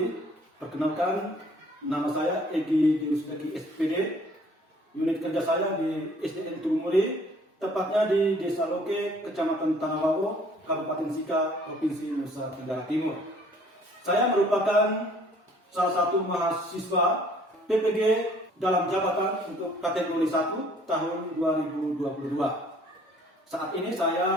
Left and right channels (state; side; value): normal; both; correlation 0.57